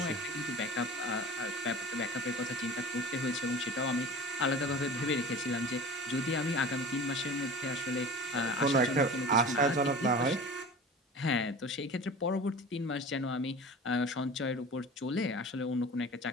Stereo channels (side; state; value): both; normal; correlation 0.37